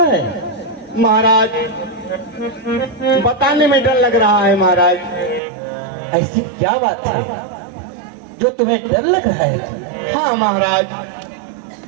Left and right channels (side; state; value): left; drops out; at 5.4 s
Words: है? महाराज बताने में डर लग रहा है महाराज। ऐसी क्या बात है जो तुम्हें डर लग रहा है? हाँ महाराज।